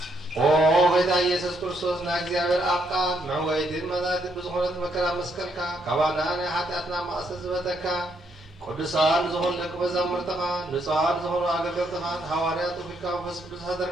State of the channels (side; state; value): both; normal; correlation 0.75